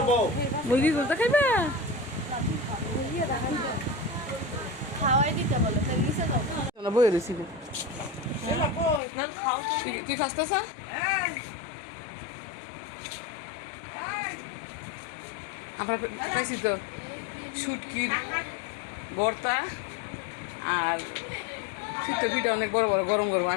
মুরগি দেখাইবা বই রয়েছি তুই খাসতেছ আমরা খাইছি তো শুটকির ভর্তা আর শীত পিঠা অনেক বড় বড় গরম গরম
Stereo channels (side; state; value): right; drops out; at 9.0 s